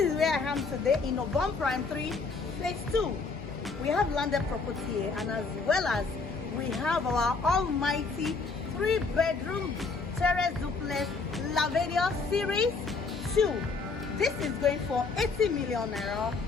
where I am today in Ogombo Prime 3, Phase 2. We have landed property here, and as well as we have our almighty 3-bedroom Terrace Duplex Lavadia Series 2. This is going for 80 million naira.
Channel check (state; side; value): quieter; right; 4.3 dB